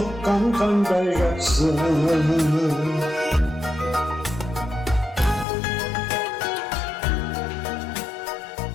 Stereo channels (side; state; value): right; drops out; at 5.5 s